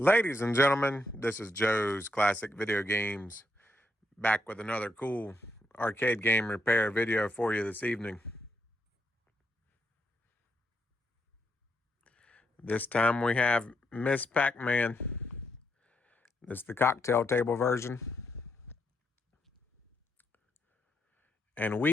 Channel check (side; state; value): both; normal; correlation 0.80